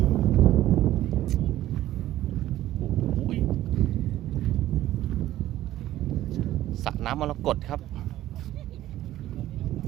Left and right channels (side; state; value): left; quieter; 14.1 dB